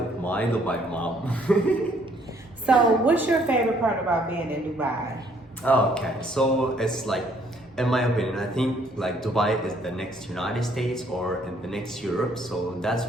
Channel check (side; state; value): both; normal; correlation 0.64